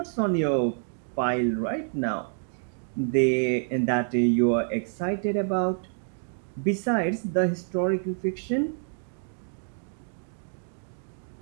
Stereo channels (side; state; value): left; silent; digital silence